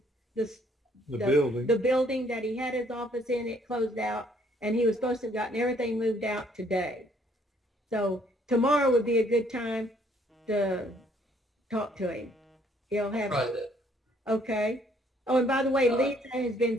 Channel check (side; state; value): both; normal; correlation 0.64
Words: building. the building that he had his office in, it closed out, and he was supposed to have gotten everything moved out today. So tomorrow would be a good time to talk to him. He'll have, Try that. okay. Oh, and by the way, Lisa has been